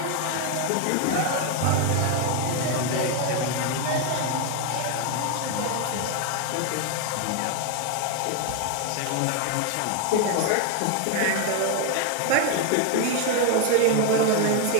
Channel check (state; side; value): different; both; correlation 0.01